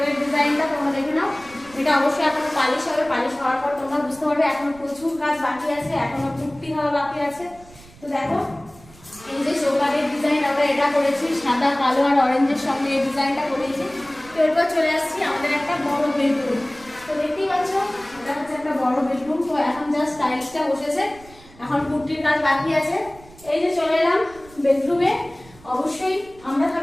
ডিজাইনটা তোমরা দেখে নাও। এটা অবশ্যই এখনো পালিশ হবে, পালিশ হওয়ার পর তোমরা বুঝতে পারবে এখনো প্রচুর কাজ বাকি আছে, এখনো পুট্টি হওয়া বাকি আছে। তো দেখো এই যে চৌকাঠের ডিজাইন আমরা এটা করেছি, সাদা কালো আর অরেঞ্জের সঙ্গে এই ডিজাইনটা করেছি। তো এরপর চলে আসছি আমাদের একটা বড় বেডরুম। তো দেখতেই পাচ্ছ এটা হচ্ছে একটা বড় বেডরুম। তো এখন জাস্ট টাইলসটা বসেছে, এখন পুট্টির কাজ বাকি আছে। এই যে চলে এলাম বেডরুমে। অবশ্যই আমরা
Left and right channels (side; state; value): right; noise; rumble, 23 dB below the sound